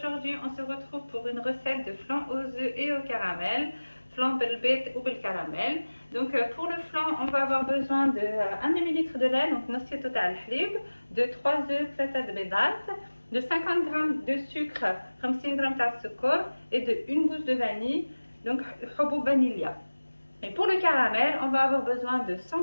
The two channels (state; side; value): inverted; both; correlation -1.00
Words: on se retrouve pour une recette de flan aux œufs et au caramel. Flan belbet ou bel caramel. Donc pour le flan, on va avoir besoin de 1 demi-litre de lait, donc نص total halib, de 3 œufs, 3 بيضات, de 50 g de sucre, 50 g de sucre et de 1 gousse de vanille, donc حبوب vanilla. Et pour le caramel, on va avoir besoin de